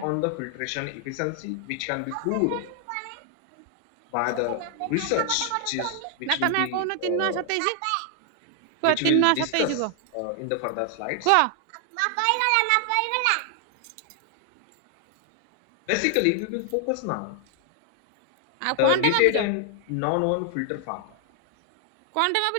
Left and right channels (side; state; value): both; different; correlation 0.00